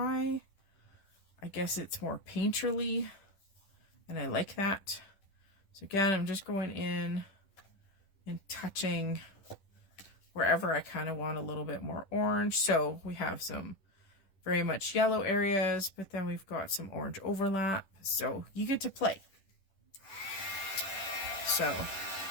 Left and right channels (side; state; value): right; late; 10 ms